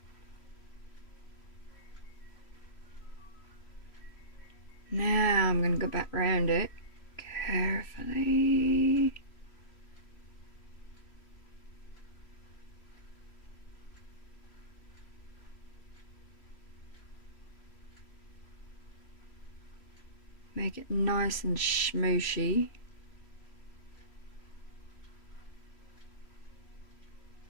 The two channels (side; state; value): right; late; 3.1 ms